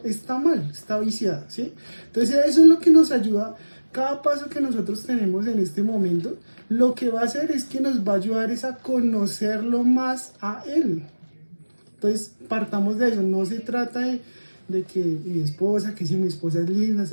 está mal, está viciada, ¿sí? Entonces eso es lo que nos ayuda. Cada paso que nosotros tenemos en este momento, lo que va a hacer es que nos va a ayudar es a conocerlo más a Él. Entonces, partamos de eso. No se trata de que mi esposa, que si mi esposa es linda, es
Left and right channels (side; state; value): both; inverted; correlation -1.00